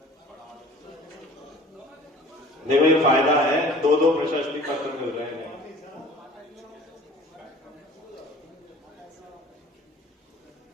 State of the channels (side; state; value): both; normal; correlation 0.47